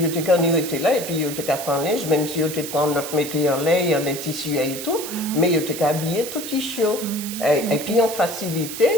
te quand était là et puis yo te qu'à faire linge, même si yo te prend notre métier en les tissus et tout, mais yo te qu'à habiller tout tissu. Et puis en facilité,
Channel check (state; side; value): noise; right; hiss, 8 dB below the sound